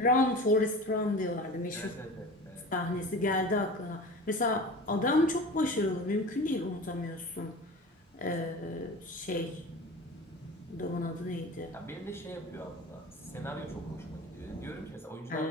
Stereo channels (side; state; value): both; normal; correlation 0.35